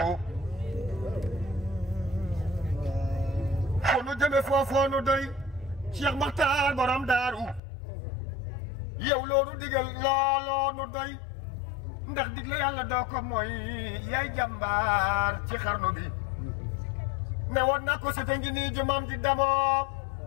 fu nu jëme foofoo nu doy Cheikh Makhtar borom daaru yow loolu digal looloo nu doy ndax digle yàlla doo ko mooy yaay jàmbaar ci xarnu bi ne woon na ko sete ngi nii jumam ji damoo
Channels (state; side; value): drops out; right; at 7.6 s